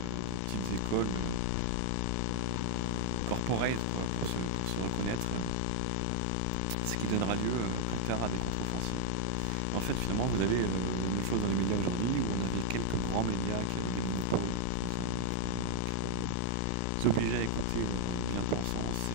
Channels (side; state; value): both; different; correlation 0.00